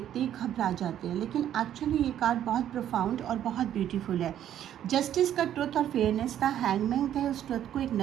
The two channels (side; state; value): left; quieter; 10.8 dB